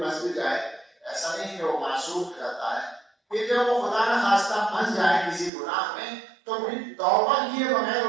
بھی جائے، ایسا نہیں کہ وہ معصوم رہتا ہے. پھر جب وہ خدا نہ خواستہ پھنس جائے کسی گناہ میں تو پھر توبہ کیے بغیر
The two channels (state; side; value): drops out; left; at 5.5 s